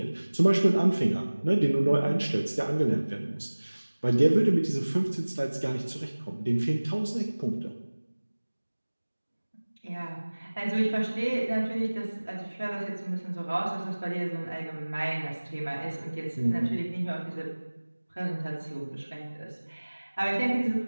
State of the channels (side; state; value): both; inverted; correlation -1.00